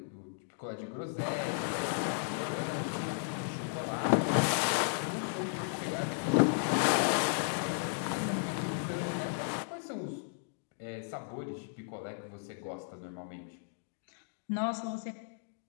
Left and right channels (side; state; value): right; silent; digital silence